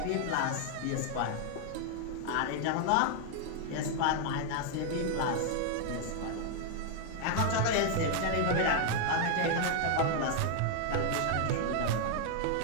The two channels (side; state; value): both; different; correlation 0.00